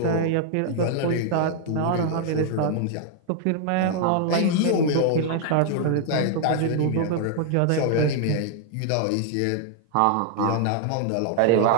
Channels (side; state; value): both; different; correlation 0.00